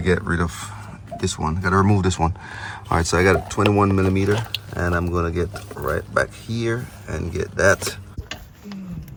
get rid of this one. Gotta remove this one. All right, so I got a 21mm, and I'm gonna get right back here and get that.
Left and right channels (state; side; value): identical; both; correlation 1.00